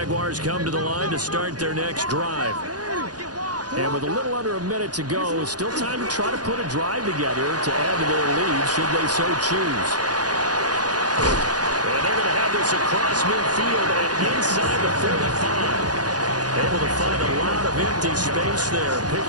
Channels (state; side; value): late; left; 0.69 ms